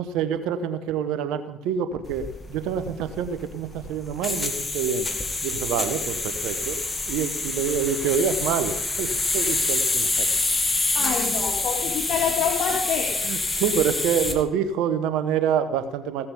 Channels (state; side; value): normal; both; correlation 0.55